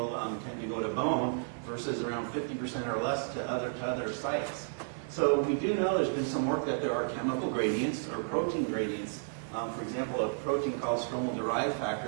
tend to go to bone, versus around 50% or less to other sites. So we do know there's been some work that there are chemical gradients or protein gradients. For example, a protein called stromal-derived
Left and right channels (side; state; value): left; silent; 56 dB below the other